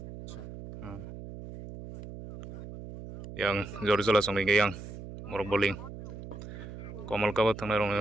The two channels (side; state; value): right; noise; hum, 12 dB below the sound